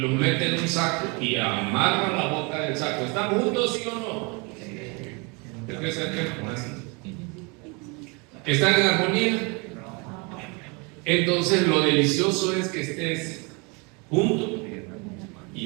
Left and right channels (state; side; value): quieter; left; 30.5 dB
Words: mete en un saco y amarra la boca del saco. ¿Están juntos, sí o no? ¿Están en armonía? Entonces lo delicioso es que estés junto